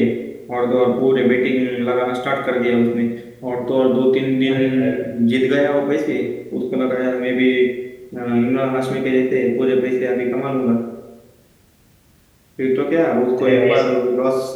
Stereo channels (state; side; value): identical; both; correlation 1.00